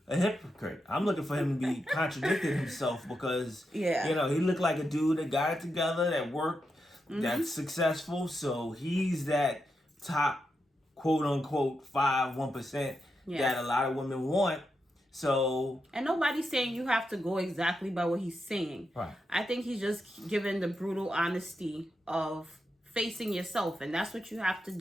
a hypocrite? I'm looking for him to be contradicting himself, because he looked like a dude that got it together, that worked, that's successful. So he's that top, quote unquote, 1% that a lot of women want. So, and nobody's saying you have to go exactly by what he's saying. Right. I think he's just giving the brutal honesty of facing yourself, and that's what you have to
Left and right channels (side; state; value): both; normal; correlation 0.86